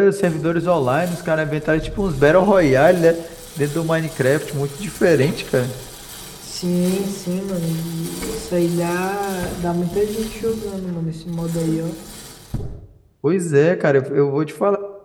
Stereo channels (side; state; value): both; identical; correlation 1.00